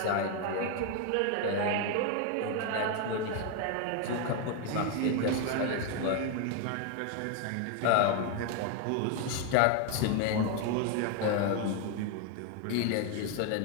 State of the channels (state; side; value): different; both; correlation 0.01